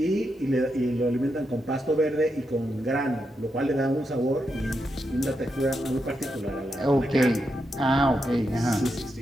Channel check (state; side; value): normal; both; correlation 0.84